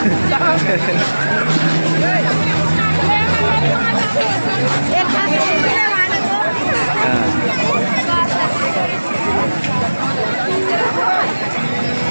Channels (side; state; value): both; inverted; correlation -1.00